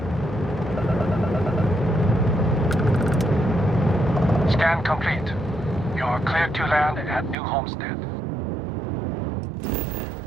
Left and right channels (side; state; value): left; drops out; at 7.4 s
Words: Scan complete. You're cleared to land at New Homestead.